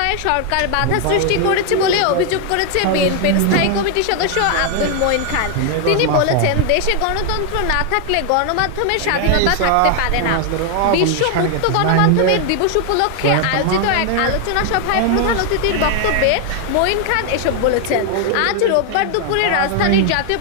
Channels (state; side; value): different; both; correlation 0.00